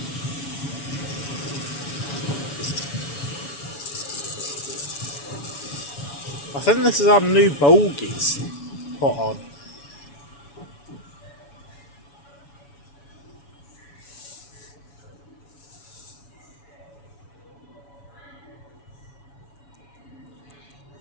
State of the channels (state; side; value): late; right; 7.1 ms